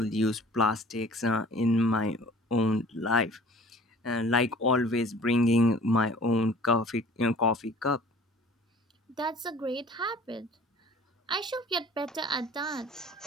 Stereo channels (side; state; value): both; normal; correlation 0.49